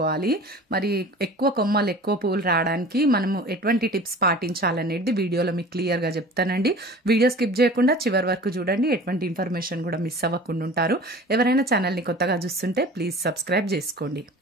మరి ఎక్కువ కొమ్మలు ఎక్కువ పువ్వులు రావడానికి మనము ఎటువంటి టిప్స్ పాటించాలనేది వీడియోలో మీకు క్లియర్గా చెప్తానండి. వీడియో స్కిప్ చేయకుండా చివరి వరకు చూడండి. ఎటువంటి ఇన్ఫర్మేషన్ కూడా మిస్ అవ్వకుండా ఉంటారు. ఎవరైనా ఛానల్ని కొత్తగా చూస్తుంటే ప్లీజ్ సబ్స్క్రైబ్ చేసుకోండి.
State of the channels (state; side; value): normal; both; correlation 0.41